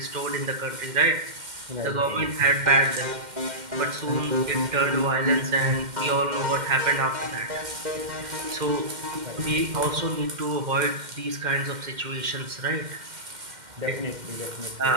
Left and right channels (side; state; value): left; late; 2.1 ms